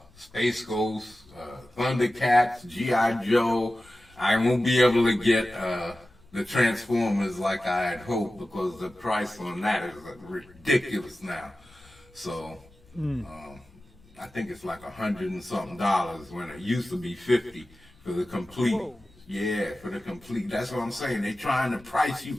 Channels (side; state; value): left; noise; rumble, 27 dB below the sound